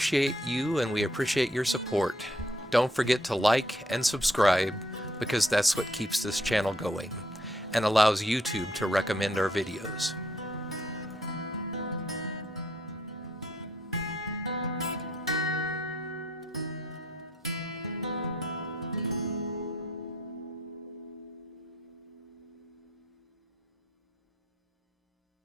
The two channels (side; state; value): both; normal; correlation 0.70